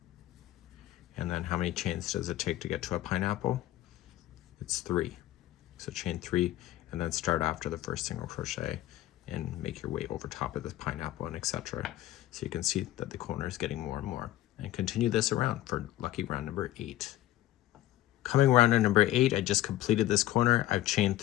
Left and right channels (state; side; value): quieter; right; 14.7 dB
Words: And then how many chains does it take to get to a pineapple? It's 3. So chain 3 and then start after the first single crochet and make your way over top of this pineapple and etc. So you can see that the corner is getting more and more. And continue this around for lucky round number 8. Coming around to number 8, I just completed this corner. I've chained